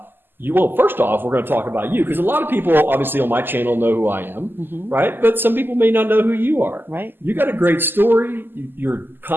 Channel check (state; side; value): late; left; 0.095 ms